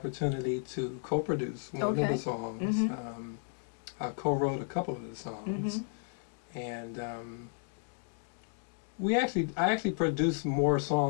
to co-produce one of the songs. I co-wrote a couple of the songs, and I actually produced more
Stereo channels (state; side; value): silent; right; 55 dB below the other